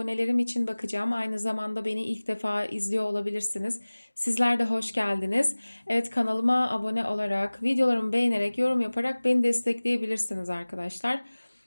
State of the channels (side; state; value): both; inverted; correlation -1.00